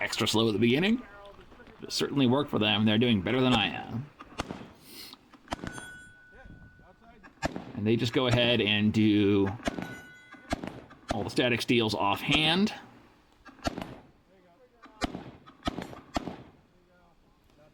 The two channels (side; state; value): both; identical; correlation 1.00